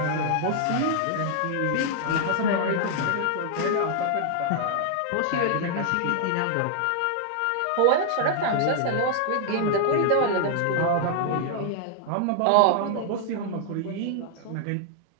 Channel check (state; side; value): different; both; correlation 0.00